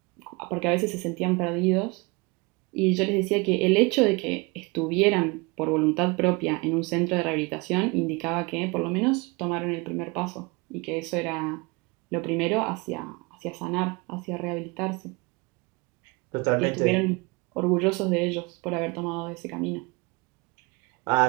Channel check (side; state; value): left; quieter; 27.1 dB